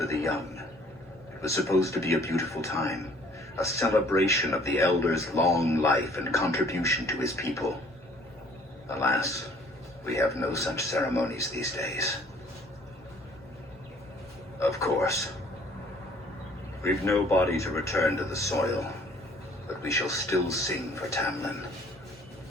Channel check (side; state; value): both; normal; correlation 0.56